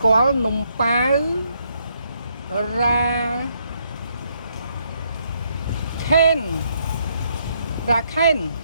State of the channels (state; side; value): inverted; both; correlation -0.73